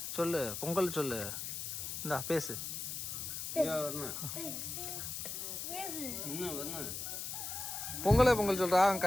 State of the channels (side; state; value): left; noise; hiss, 5 dB below the sound